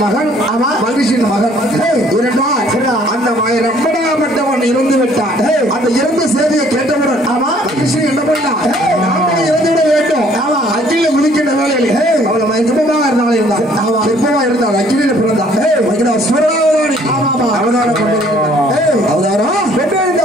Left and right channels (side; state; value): both; normal; correlation 0.60